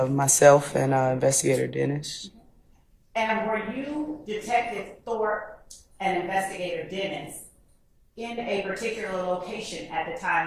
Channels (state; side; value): identical; both; correlation 1.00